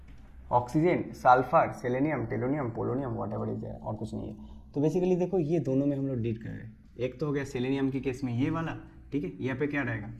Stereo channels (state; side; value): identical; both; correlation 1.00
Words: Oxygen, sulphur, selenium, tellurium, polonium, whatever is there, और कुछ नहीं है। तो बेसिकली देखो ये दोनों में हम लोग डील कर रहे हैं। एक तो हो गया सेलेनियम के केस में ये वाला, ठीक है, यहाँ पे क्या रहेगा,